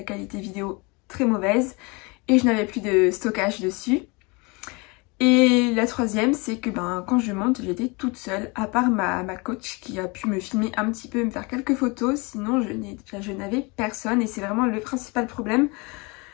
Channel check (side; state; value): right; quieter; 27.9 dB